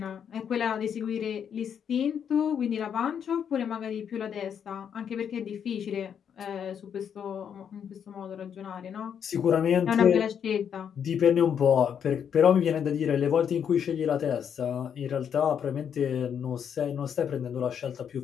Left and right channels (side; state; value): right; quieter; 8.1 dB